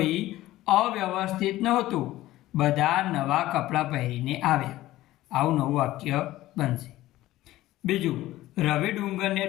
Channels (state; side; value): quieter; right; 16.0 dB